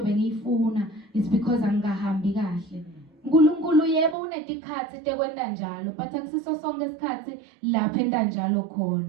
bengiyifuna it's because angahambi kahle. uNkulunkulu yebo unetikhathi tekwenta njalo but akusiso sonke isikhathi lapha enta njalo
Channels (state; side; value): drops out; left; at 4.2 s